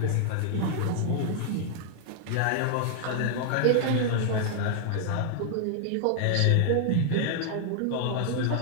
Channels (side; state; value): both; different; correlation 0.00